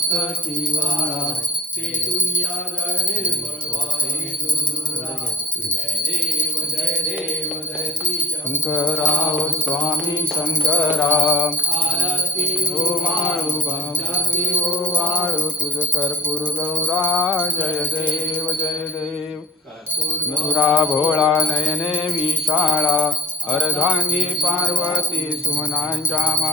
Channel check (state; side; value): normal; both; correlation 0.50